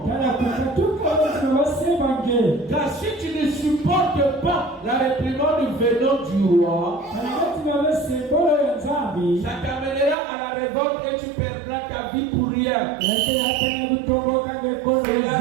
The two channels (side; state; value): left; drops out; at 10.2 s